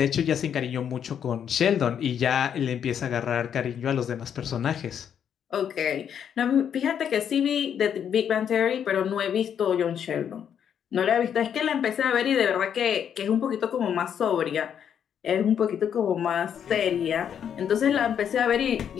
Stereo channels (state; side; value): quieter; right; 8.5 dB